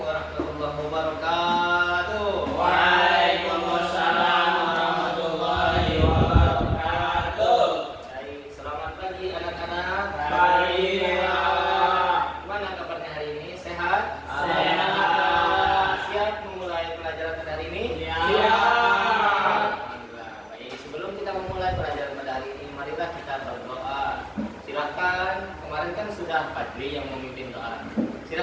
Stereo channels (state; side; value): identical; both; correlation 1.00